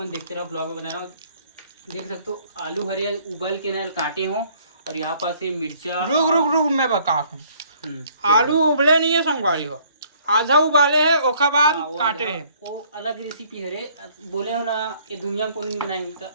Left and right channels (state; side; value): inverted; both; correlation -0.60